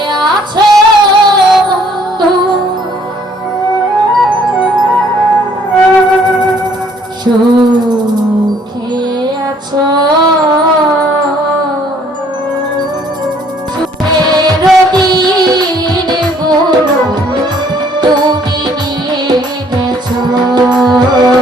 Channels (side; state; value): both; normal; correlation 0.62